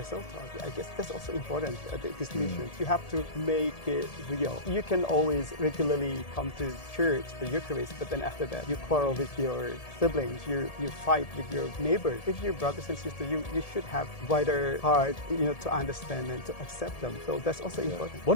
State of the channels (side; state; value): right; late; 1.7 ms